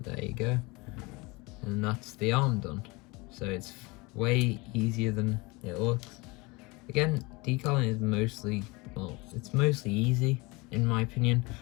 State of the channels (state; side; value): quieter; right; 25.3 dB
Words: there you go. And that's the arm done. So it's way easier than it looks. Again, decaling is mostly, well, it's mostly easy in my opinion.